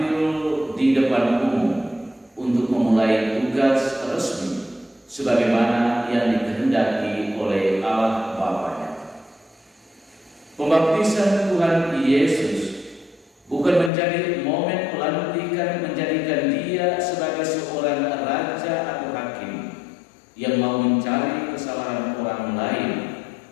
di depan umum untuk memulai tugas resmi sebagaimana yang dikehendaki oleh Allah Bapa-Nya. Pembaptisan Tuhan Yesus bukan menjadi momen pelantikan menjadikan Dia sebagai seorang raja atau hakim yang mau mencari kesalahan orang lain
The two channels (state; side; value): drops out; right; at 13.9 s